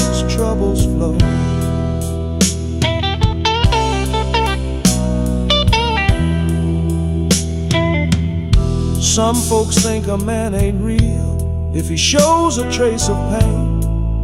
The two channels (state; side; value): identical; both; correlation 1.00